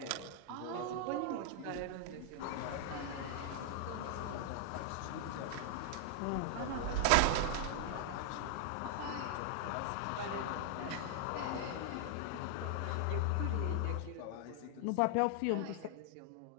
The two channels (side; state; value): both; different; correlation 0.00